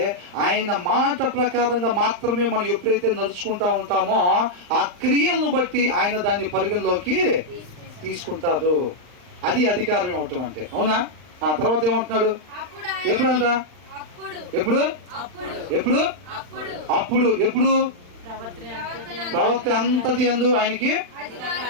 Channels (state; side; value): late; left; 39 ms